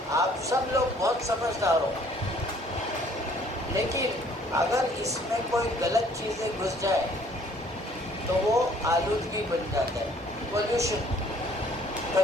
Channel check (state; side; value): normal; both; correlation 0.59